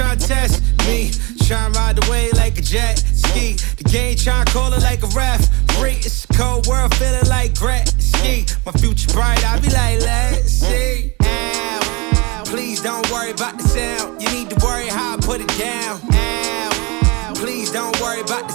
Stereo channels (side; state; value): left; quieter; 27.2 dB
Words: to test me. Trying to ride the wave like a jet ski. The game trying to call it like a ref. It's a cold world, feeling like Gretzky. My future bright, I be like, let's see. Ow. Please don't worry about the sound. You need to worry how I put it down. Ow. Please don't worry about